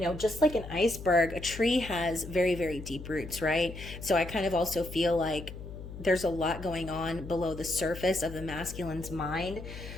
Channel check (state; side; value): noise; left; hum, 11 dB below the sound